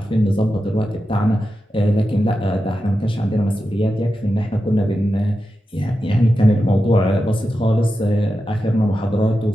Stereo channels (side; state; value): both; normal; correlation 0.90